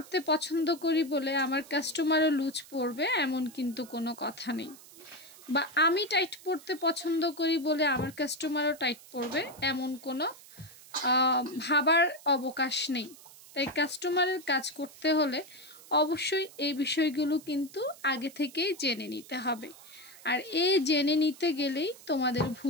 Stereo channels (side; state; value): right; noise; hiss, 20 dB below the sound